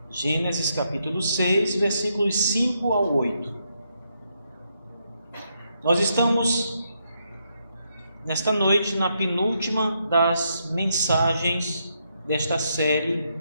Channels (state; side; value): inverted; both; correlation -0.78